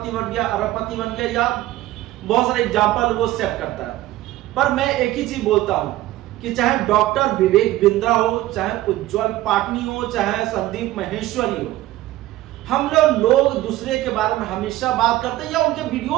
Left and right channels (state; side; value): quieter; left; 15.7 dB